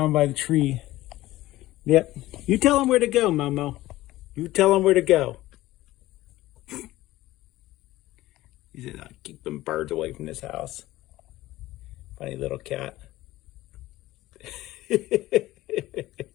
by the tree. Yep. You tell him where to go, Momo. You tell him where to go. He said, "I'll keep them birds away from this house." Funny little cat.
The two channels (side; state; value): right; quieter; 16.7 dB